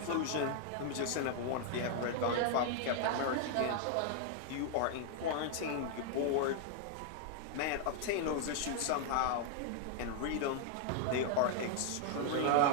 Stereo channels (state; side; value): different; both; correlation 0.00